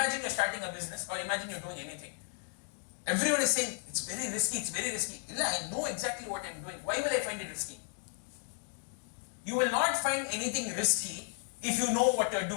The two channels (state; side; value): silent; right; 55 dB below the other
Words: you are starting a business, or imagine you are doing anything. Everyone is saying, it's very risky, it's very risky. I know exactly what I am doing. Why will I find it risky? You will not find anything risky if you know what you are